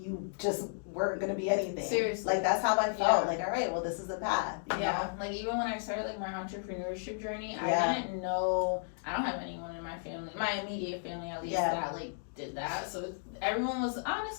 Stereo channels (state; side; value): silent; right; digital silence